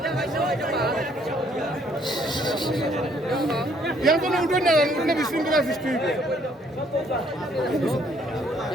ইয়ার জন্য উঠে না উঠলে বিশৃঙ্খলা সৃষ্টি হইবে।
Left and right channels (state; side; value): normal; both; correlation 0.65